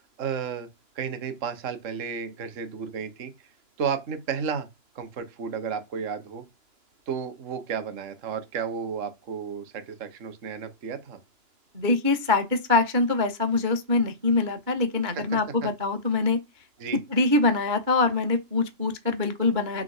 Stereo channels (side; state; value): left; late; 2.9 ms